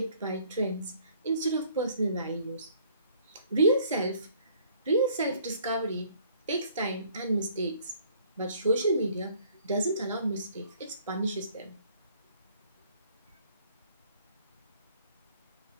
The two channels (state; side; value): inverted; both; correlation -0.58